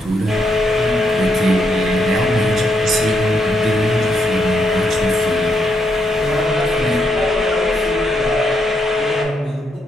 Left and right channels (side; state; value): both; normal; correlation 0.77